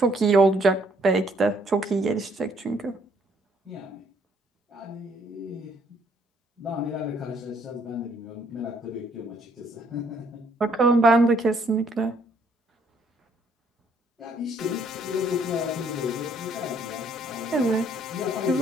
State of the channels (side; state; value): both; normal; correlation 0.66